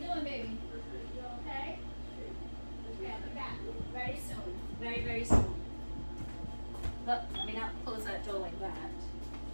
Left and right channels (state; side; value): inverted; both; correlation -1.00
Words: baby? You okay? Okay, I'll be back very soon. Very, very soon. Look, let me not close that door like that.